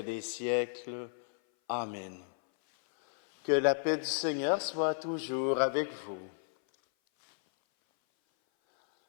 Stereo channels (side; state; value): right; silent; 56 dB below the other